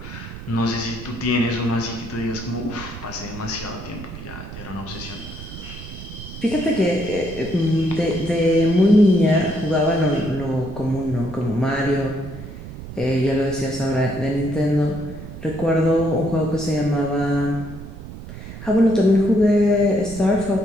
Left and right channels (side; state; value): right; noise; rumble, 12 dB below the sound